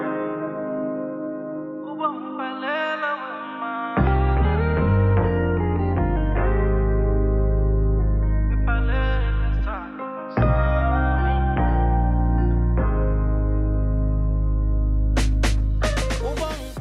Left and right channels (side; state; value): both; identical; correlation 1.00